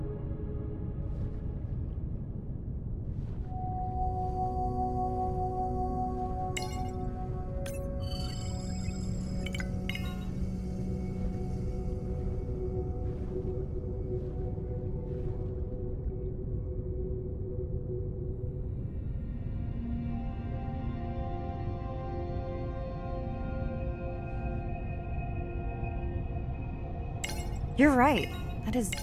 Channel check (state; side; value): identical; both; correlation 1.00